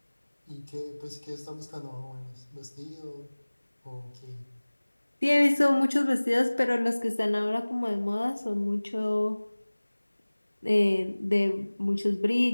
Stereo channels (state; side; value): inverted; both; correlation -1.00